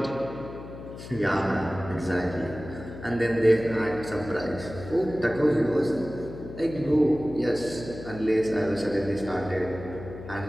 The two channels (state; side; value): noise; left; hum, 12 dB below the sound